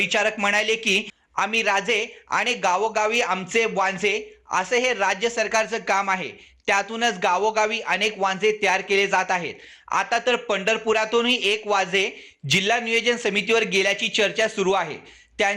म्हणाले की आम्ही राजे आणि गावोगावी आमचे वांझे असे हे राज्य सरकारचं काम आहे। त्यातूनच गावोगावी अनेक वांझे तयार केले जात आहेत। आता तर पंढरपुरातूनही एक वांझे जिल्हा नियोजन समितीवर गेल्याची चर्चा सुरू आहे।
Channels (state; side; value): identical; both; correlation 1.00